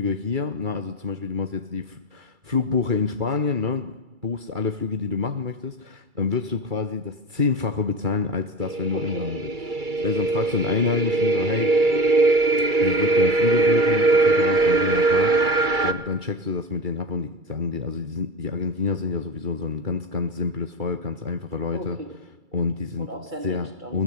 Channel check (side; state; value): left; late; 2.3 ms